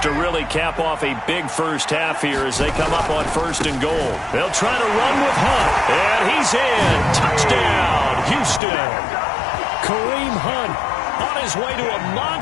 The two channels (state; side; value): drops out; right; at 8.6 s